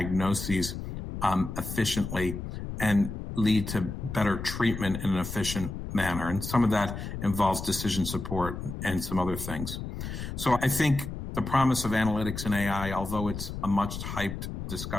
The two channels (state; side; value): noise; left; rumble, 7 dB below the sound